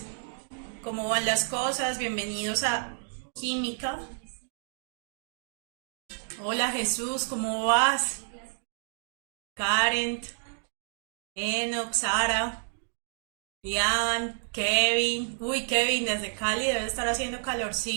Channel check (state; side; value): silent; left; 58 dB below the other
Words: ¿Cómo van las cosas? Bienvenidos a Química. Hola Jesús, ¿cómo vas? Karen, Enoch, Sara, Ian, Kevin. Uy, Kevin, desde Cali debe estar haciendo